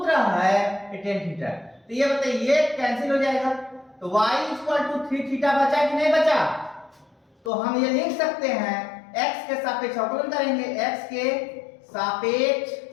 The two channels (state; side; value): drops out; right; at 7.5 s